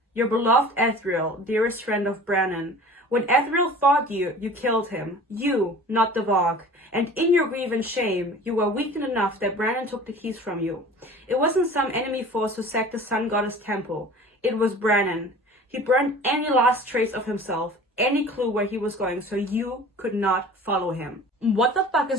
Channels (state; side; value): normal; both; correlation 0.42